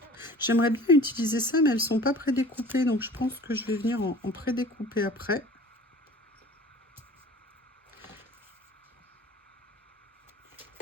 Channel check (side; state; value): both; normal; correlation 0.44